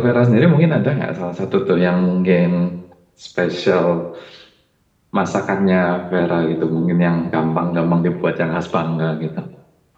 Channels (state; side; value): identical; both; correlation 1.00